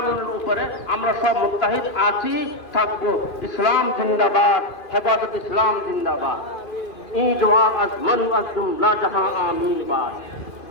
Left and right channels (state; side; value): late; right; 2.5 ms